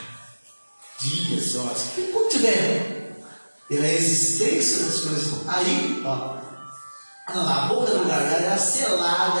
dias, horas, enquanto tiver a existência das coisas, aí, a boca do gargalo era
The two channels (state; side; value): inverted; both; correlation -1.00